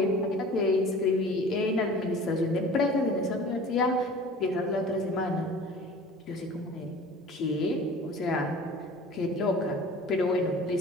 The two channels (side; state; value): both; normal; correlation 0.42